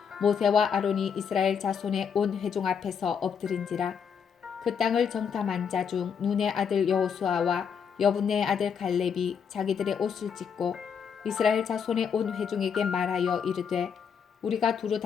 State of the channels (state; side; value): quieter; right; 6.9 dB